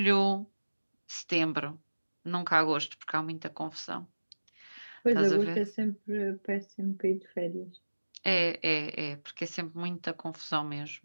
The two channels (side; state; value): both; inverted; correlation -1.00